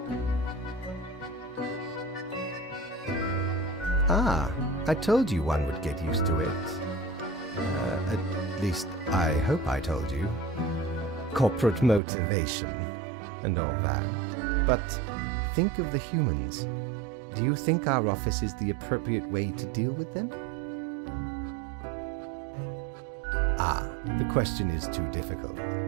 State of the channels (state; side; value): drops out; left; at 12.0 s